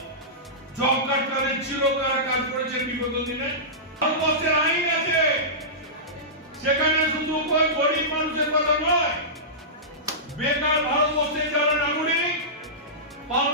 জব কার্ড কাদের ছিল, কারা কাজ করেছে বিগত দিনে? ভারতবর্ষের আইন আছে, সেখানে শুধু কোন গরিব মানুষের কথা নয়, বেকার ভারতবর্ষে যারা নাগরিক,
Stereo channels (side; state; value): both; normal; correlation -0.17